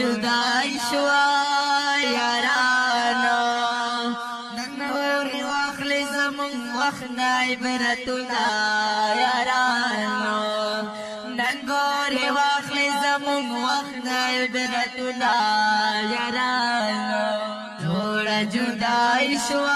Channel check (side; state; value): both; identical; correlation 1.00